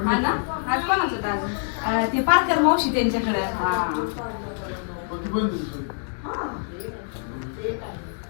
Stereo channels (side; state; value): right; silent; 62 dB below the other